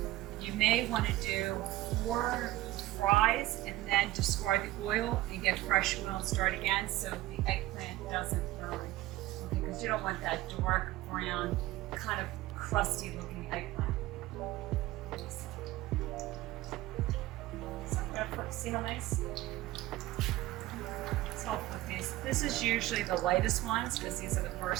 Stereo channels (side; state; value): left; quieter; 16.9 dB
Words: you may want to do 4 fries and then discard the oil and get fresh oil and start again so the eggplant doesn't burn. Okay, because you don't want that dark brown, kind of crusty looking eggplant. So I'm going to put, see how nice? So I'll put these. This is usually the lightest ones because these are the